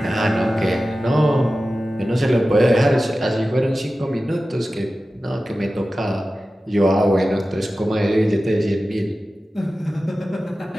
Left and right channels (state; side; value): normal; both; correlation 0.95